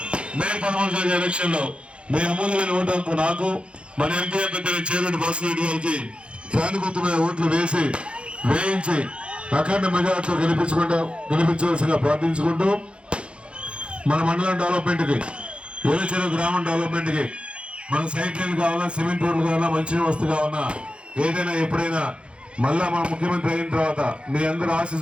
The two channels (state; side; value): late; left; 0.058 ms